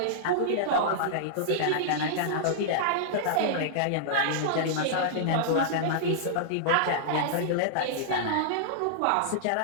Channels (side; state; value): both; different; correlation -0.02